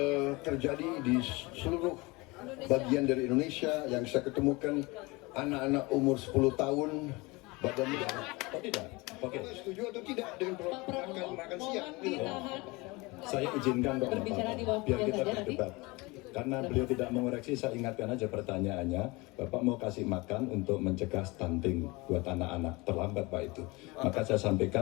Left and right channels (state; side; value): quieter; right; 24.3 dB